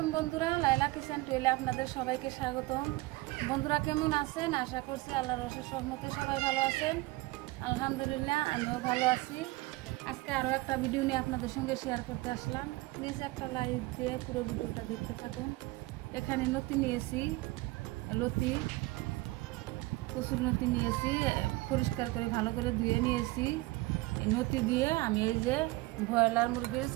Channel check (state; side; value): quieter; left; 21.1 dB